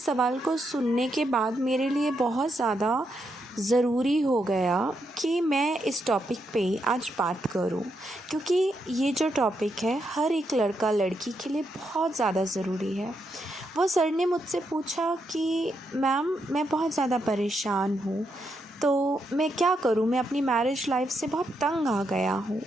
सवाल को सुनने के बाद मेरे लिए बहुत ज़्यादा ज़रूरी हो गया कि मैं इस टॉपिक पे आज बात करूं, क्योंकि ये जो टॉपिक है हर एक लड़का लड़की के लिए बहुत ज़्यादा ज़रूरी है। वो सर ने मुझसे पूछा कि मैम मैं बहुत ज़्यादा परेशान हूँ, तो मैं क्या करूँ, मैं अपनी मैरिज लाइफ से बहुत तंग आ गया हूँ।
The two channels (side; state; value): both; normal; correlation 0.81